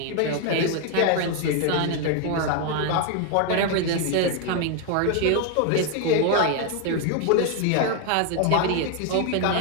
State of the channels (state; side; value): different; both; correlation 0.01